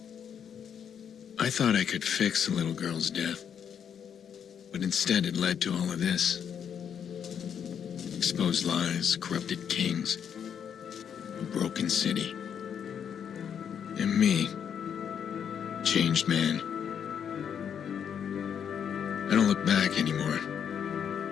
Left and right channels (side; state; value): right; quieter; 8.1 dB